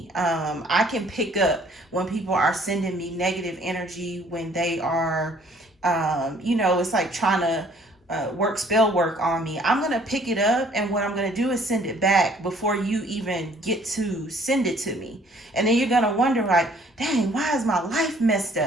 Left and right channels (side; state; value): both; normal; correlation 0.59